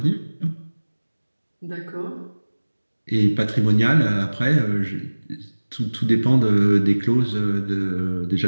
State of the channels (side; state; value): both; inverted; correlation -1.00